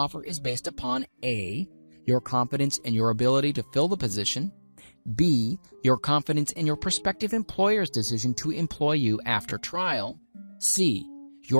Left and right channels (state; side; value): inverted; both; correlation -1.00